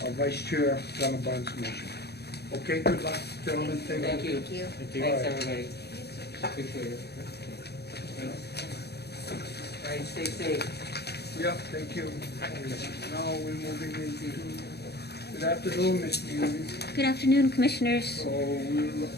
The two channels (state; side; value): late; right; 0.48 ms